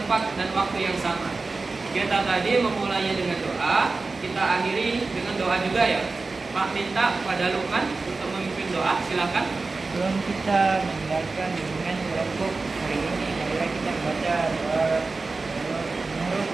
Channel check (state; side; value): quieter; left; 3.8 dB